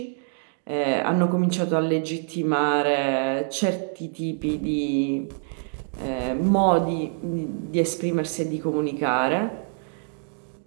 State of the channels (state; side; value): silent; left; 62 dB below the other